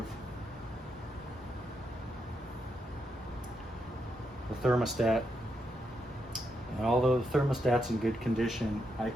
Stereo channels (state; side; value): normal; both; correlation 0.81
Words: the thermostat, and although the thermostat's in good condition, I